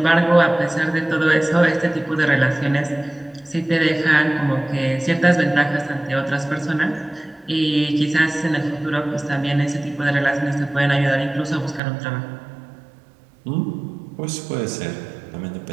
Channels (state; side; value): drops out; left; at 11.8 s